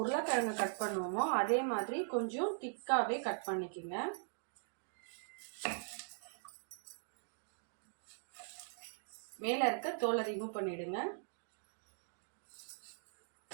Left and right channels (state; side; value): silent; left; digital silence